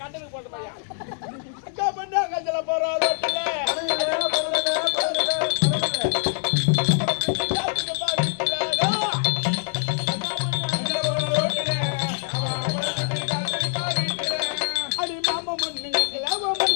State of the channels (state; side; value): silent; right; digital silence